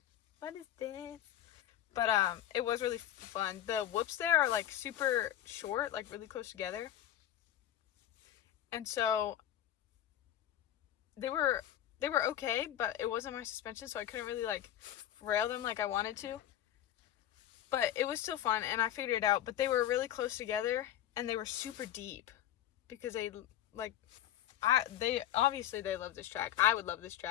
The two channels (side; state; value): right; quieter; 11.8 dB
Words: what is this? But it was really fun. The whoops there are like super short, like really close together. And so they were okay, but it wasn't my suspension, so I couldn't really like rail them like I wanted to. But it was still fun, and I figured it out. But they were really close together, and they were super deep because they obviously they love this track. I would love this